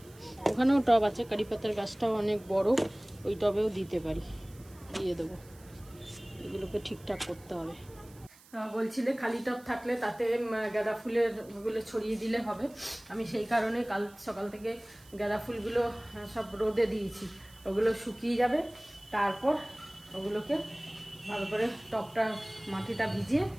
ওখানেও টব আছে, কারি পাতার গাছটাও অনেক বড়, ওই টবেও দিতে পারি, দিয়ে দেবো। এগুলোকে ঠিকঠাক করতে হবে। বলছিলে খালি টব থাকলে তাতে গাঁদা ফুলের ওগুলো ছড়িয়ে দিলে হবে। আমি সেই কারণে কাল সকাল থেকে গাঁদা ফুলগুলো সব রোদে দিয়েছি, ওগুলো শুকিয়ে যাবে, তারপর ওগুলোকে ভালো করে টবটা মাটিটা ভিজিয়ে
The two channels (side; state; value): right; noise; hiss, 24 dB below the sound